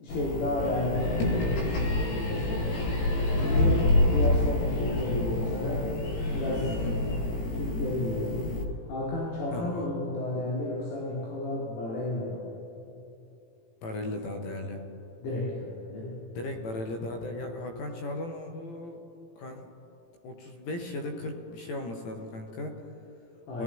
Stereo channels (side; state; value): right; late; 18 ms